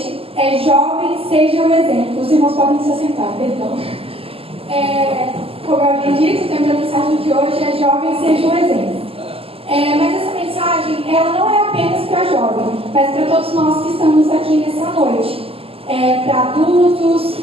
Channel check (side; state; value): left; late; 0.28 ms